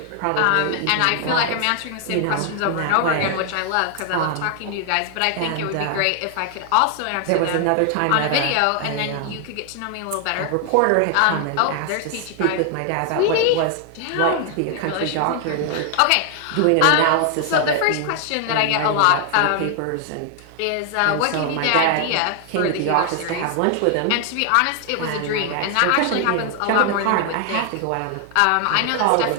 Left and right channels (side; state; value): both; different; correlation 0.00